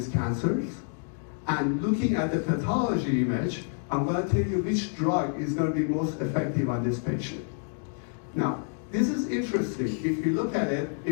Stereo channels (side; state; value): right; silent; 59 dB below the other